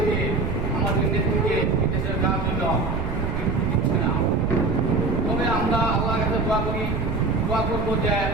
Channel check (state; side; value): noise; right; rumble, 3 dB below the sound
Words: দিয়ে আমাদের নেত্রীকে বিদেশে যাওয়ার জন্য দিচ্ছে না। তবে আমরা আল্লাহর কাছে দোয়া করবো যে